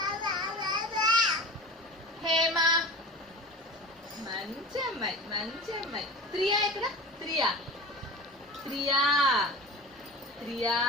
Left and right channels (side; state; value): both; normal; correlation 0.34